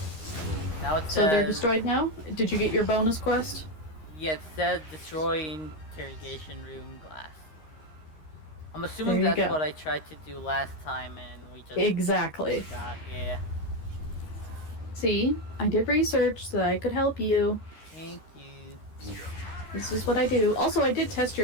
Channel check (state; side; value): late; right; 13 ms